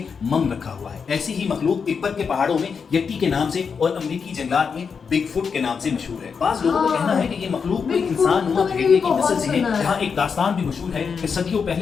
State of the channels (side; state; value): right; quieter; 5.9 dB